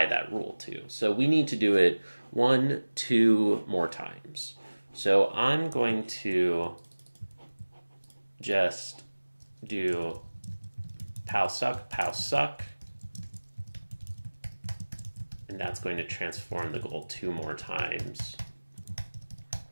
that rule to. So we need to do it 1, 2 more times. So I'm going to just do pow suck, and that's going to transform the goal 2 more times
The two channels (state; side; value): inverted; both; correlation -1.00